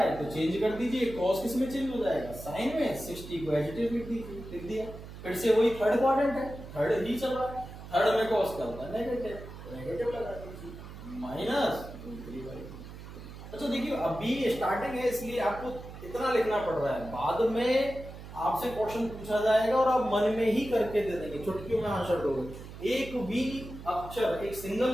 तो चेंज कर दीजिए, cos किस में चेंज हो जाएगा, साइन में, 60 को एज इट इज लिख दीजिए, लिख दिया। फिर से वही थर्ड क्वाड्रेंट है, थर्ड ही चल रहा है, थर्ड में cos क्या होता है, नेगेटिव, तो नेगेटिव लगा दीजिए, माइनस। अच्छा देखिए अभी स्टार्टिंग है इसलिए आपको इतना लिखना पड़ रहा है, बाद में आपसे क्वेश्चन पूछा जाएगा और आप मन में ही करके दे देंगे, चुटकियों में आंसर दोगे। एक भी अक्षर, एक सिंगल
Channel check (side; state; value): right; noise; hum, 13 dB below the sound